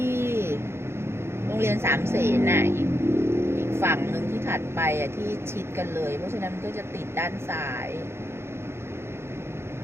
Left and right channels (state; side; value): late; left; 0.12 ms